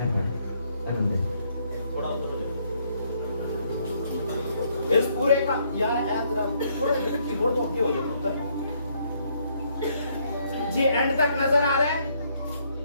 इस पूरे का यार थोड़ा कीबोर्ड तो हो जाए जी, एंड तक नजर आ रहा है?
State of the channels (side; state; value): both; inverted; correlation -0.70